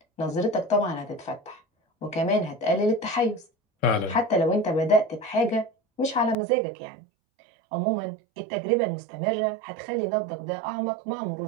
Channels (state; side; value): drops out; left; at 6.4 s